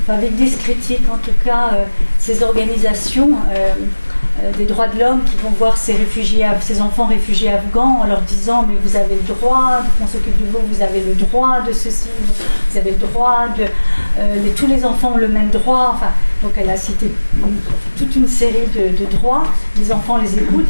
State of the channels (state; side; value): inverted; both; correlation -1.00